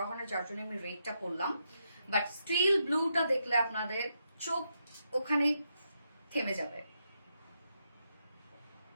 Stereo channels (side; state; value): both; inverted; correlation -0.82